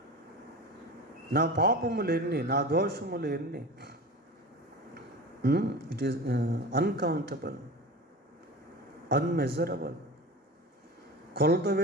నా పాపములు ఎన్ని, నా దోషములు ఎన్ని. It is uncountable, unmeasurable.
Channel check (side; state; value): both; normal; correlation 0.32